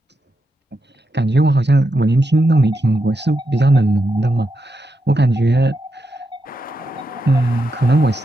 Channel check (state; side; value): normal; both; correlation 0.85